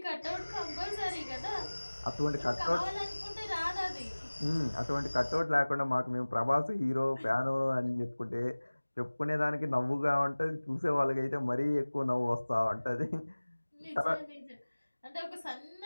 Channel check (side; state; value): both; inverted; correlation -1.00